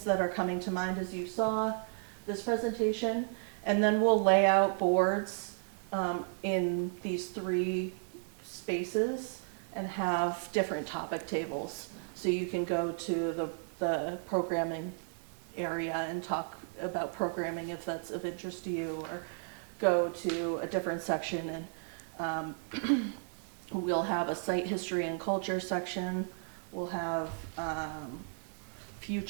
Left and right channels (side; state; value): left; silent; 55 dB below the other